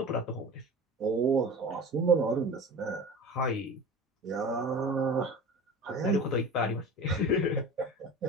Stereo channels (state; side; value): normal; both; correlation 0.35